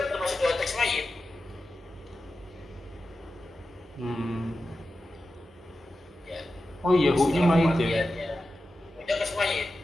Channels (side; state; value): both; normal; correlation 0.92